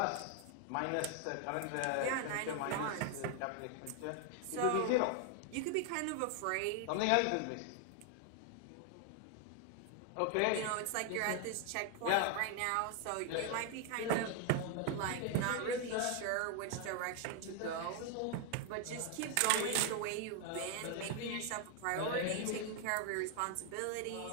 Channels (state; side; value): different; both; correlation 0.00